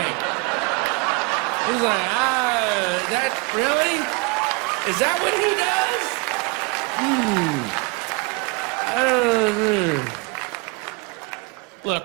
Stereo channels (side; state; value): left; quieter; 27.9 dB